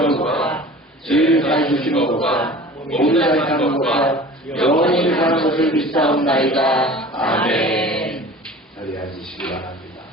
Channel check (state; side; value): normal; both; correlation 0.42